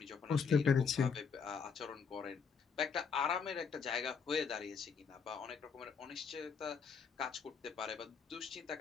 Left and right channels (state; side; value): quieter; right; 5.9 dB